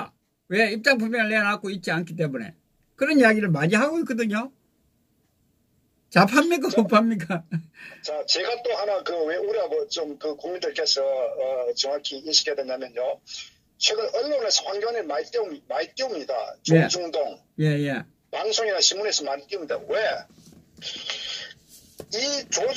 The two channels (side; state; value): both; identical; correlation 1.00